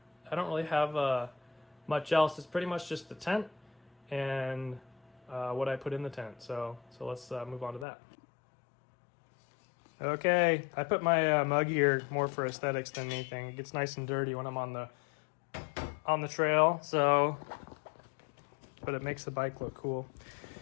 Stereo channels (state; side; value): drops out; right; at 7.9 s